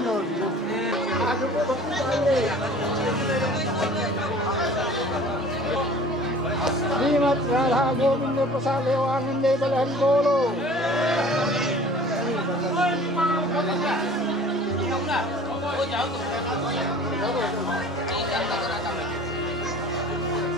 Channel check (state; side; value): normal; both; correlation 0.46